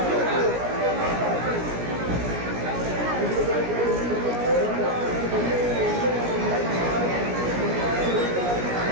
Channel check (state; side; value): late; left; 17 ms